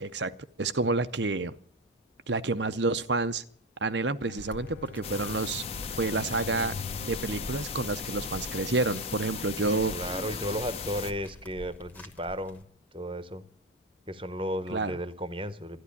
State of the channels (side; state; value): both; normal; correlation 0.14